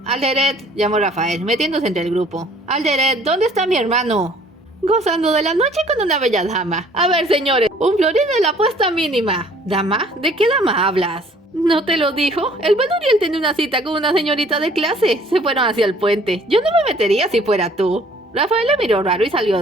Alderet, llamó Rafael, metiéndose entre el grupo. Alderet, ¿dónde está mi hermano? Gozando de la noche con una bella dama. A ver, señores, un florín es la apuesta mínima. ¿Dama? ¿De qué dama hablas? ¿No te lo dijo? El buen Uriel tiene una cita con una señorita de clase. Se fueron hacia el puente. Yo no me metería si fuera tú. Rafael le miró raro y salió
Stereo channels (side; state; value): both; normal; correlation 0.56